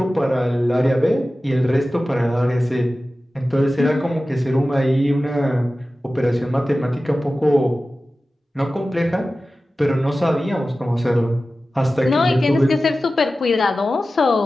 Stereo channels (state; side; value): normal; both; correlation 0.95